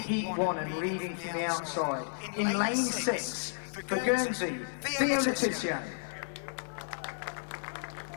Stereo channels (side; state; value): right; silent; 56 dB below the other